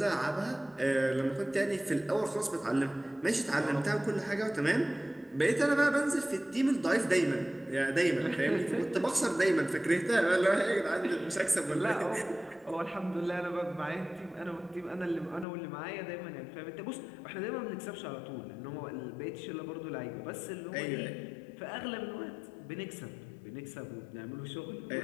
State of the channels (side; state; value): right; drops out; at 15.5 s